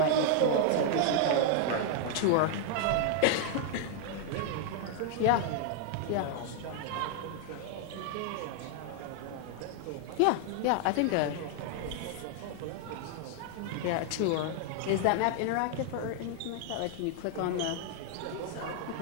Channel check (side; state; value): both; different; correlation 0.00